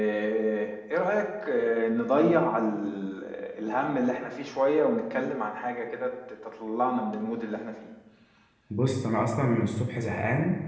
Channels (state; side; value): identical; both; correlation 1.00